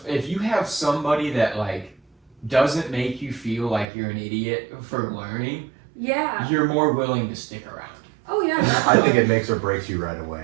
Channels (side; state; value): left; drops out; at 3.9 s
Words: if you have somebody that like doesn't make you feel like you're an idiot for learning, Yeah. you're more willing to stick around. Oh yeah. I think definitely. it makes or breaks you right